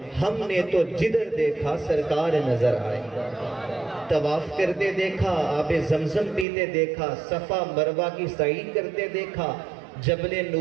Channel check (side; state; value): left; drops out; at 6.5 s